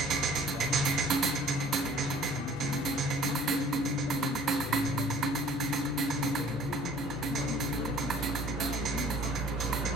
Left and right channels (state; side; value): normal; both; correlation 0.52